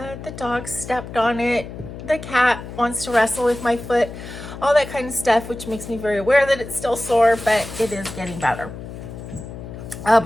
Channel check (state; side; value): noise; left; hum, 11 dB below the sound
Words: dog stepped on it. The cat wants to wrestle with my foot, all that kind of stuff, which makes me very aware that it's still sore, but it is getting better.